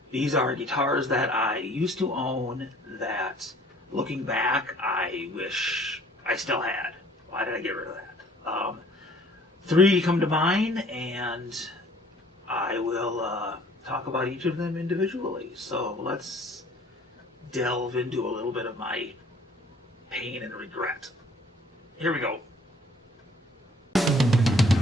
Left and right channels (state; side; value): normal; both; correlation 0.56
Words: These are guitars that I used to own that, looking back, I wish I still had. Why did I get rid of that? Three come to mind, and I will talk about each of them individually. So let's delve into a little bit of my pain and regret. Here we go.